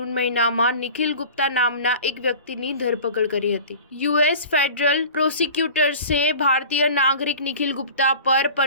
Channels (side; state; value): both; inverted; correlation -0.40